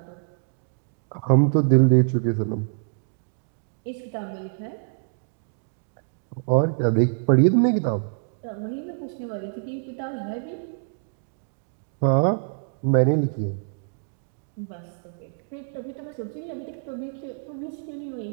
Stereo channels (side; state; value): left; silent; digital silence